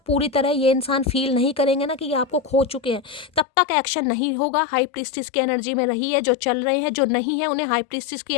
पूरी तरह ये इंसान फील नहीं करेंगे ना कि ये आपको खो चुके हैं, तब तक एक्शन नहीं होगा। हाई प्रीस्टिस की एनर्जी में रहिए, जो चल रहे हैं, जो नहीं है उन्हें हाई प्रीस्टिस की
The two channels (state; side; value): drops out; right; at 3.5 s